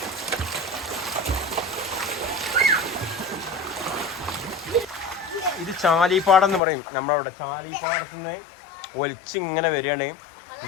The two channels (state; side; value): drops out; right; at 6.6 s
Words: ഇത് ചാലിപ്പാടം എന്ന് പറയും നമ്മളവിടെ. ചാലിപ്പാടത്തുനിന്ന് ഒലിച്ചിങ്ങനെ വരികയാണ്. ഇത്